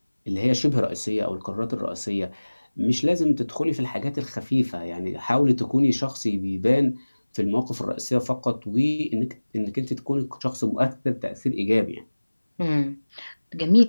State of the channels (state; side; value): inverted; both; correlation -1.00